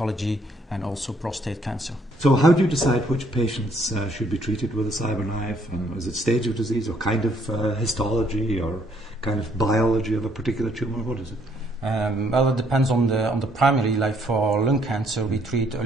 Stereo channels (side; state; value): both; normal; correlation 0.67